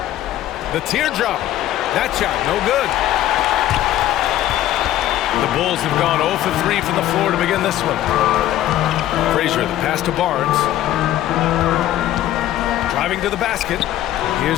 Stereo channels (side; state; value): right; quieter; 13.3 dB